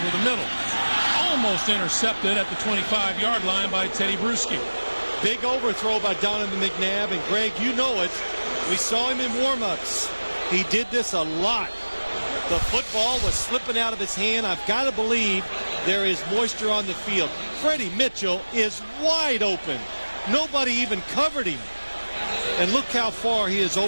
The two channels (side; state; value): both; inverted; correlation -1.00